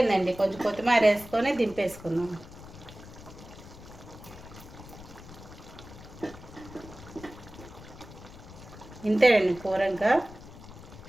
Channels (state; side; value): noise; left; rumble, 16 dB below the sound